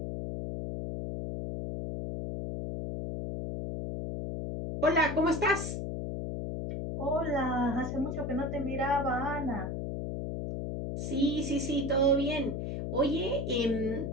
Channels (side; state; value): left; noise; hum, 4 dB below the sound